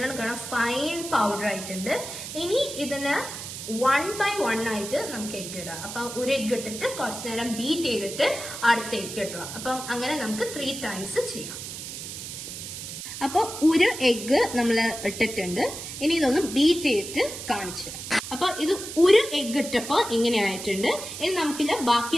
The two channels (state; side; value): noise; right; hiss, 9 dB below the sound